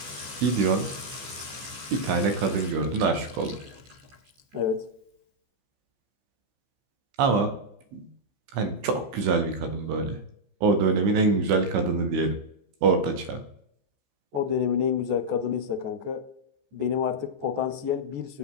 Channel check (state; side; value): late; left; 15 ms